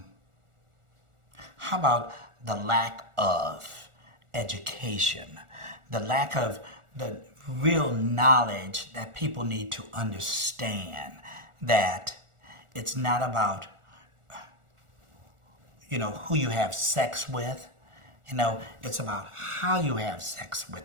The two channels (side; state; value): left; late; 1.4 ms